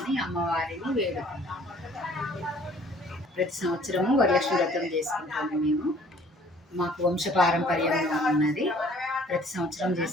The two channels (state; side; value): normal; both; correlation 0.56